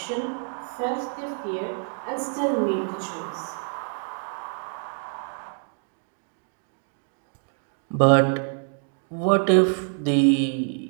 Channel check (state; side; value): silent; left; 57 dB below the other